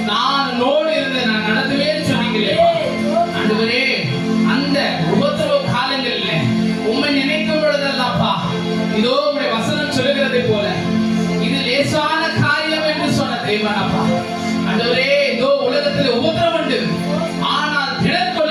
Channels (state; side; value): identical; both; correlation 1.00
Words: நான் உன்னோடு இருந்து நான் நடத்துவேன் சொன்னீங்களே ஆண்டவரே. அந்த உபத்திரவ காலங்களில் உம்மை நினைக்கும் பொழுதெல்லாம்ப்பா, இதோ உங்களுடைய வசனம் சொல்லுகிறதை போல இது லேசான காரியம் என்று சொன்ன தேவனப்பா. ஆண்டவரே, இதோ உலகத்தில் உபத்திரவம் உண்டு, ஆனால் திடன்